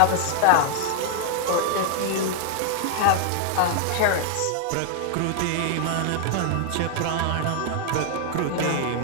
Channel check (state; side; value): different; both; correlation 0.00